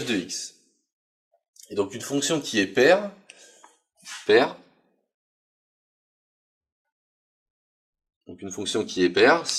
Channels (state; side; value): identical; both; correlation 1.00